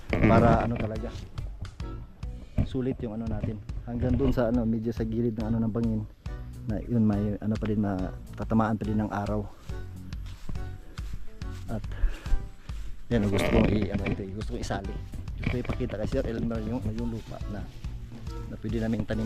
para talaga sulit yung natin, hanggang doon sa medyo sa gilid ng ng bangin, na yun may pa din, matatamaan pa din ng araw. At yan, gusto kong gusto kong isali, gusto kong ipakita kay Sir Elmer yung lupa na pwede namin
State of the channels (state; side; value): identical; both; correlation 1.00